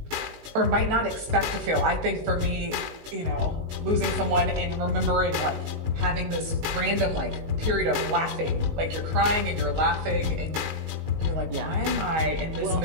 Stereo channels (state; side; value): late; left; 19 ms